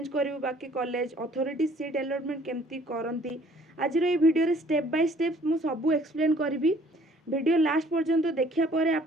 करू बाकी कॉलेज अथॉरिटी सीट अलॉटमेंट केमती करती। आज ये वीडियो रे स्टेप बाय स्टेप मु सबू एक्सप्लेन करी। वीडियो लास्ट पर्यंत देखिया परे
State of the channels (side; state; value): both; normal; correlation 0.57